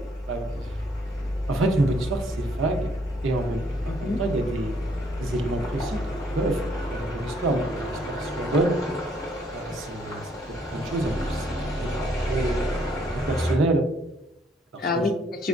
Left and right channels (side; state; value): both; normal; correlation 0.67